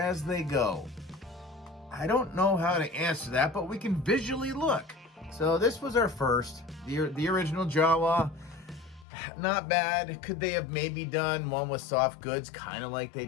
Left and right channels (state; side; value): drops out; right; at 9.1 s